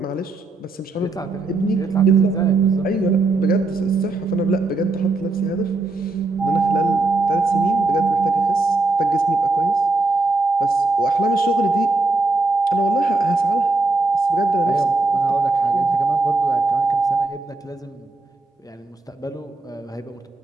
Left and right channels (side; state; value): left; quieter; 3.4 dB